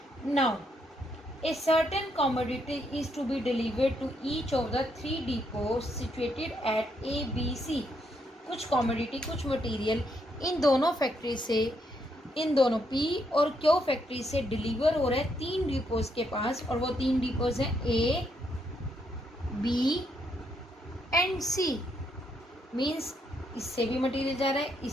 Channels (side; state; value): both; normal; correlation 0.76